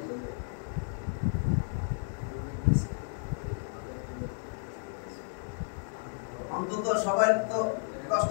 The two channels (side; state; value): right; silent; 56 dB below the other